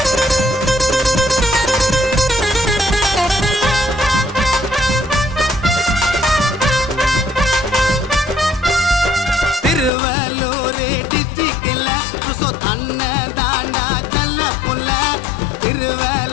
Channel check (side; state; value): right; drops out; at 9.9 s